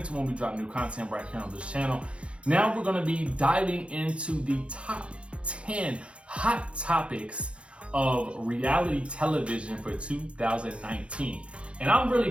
when we drop new content right here on this channel. Now we're going to be diving into the top 10 hot topics of reality television for 2019. And I'm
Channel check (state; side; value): late; left; 0.059 ms